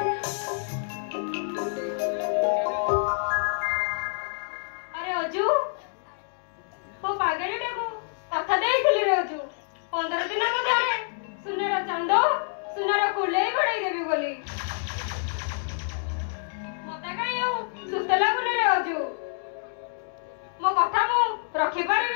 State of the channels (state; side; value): silent; right; digital silence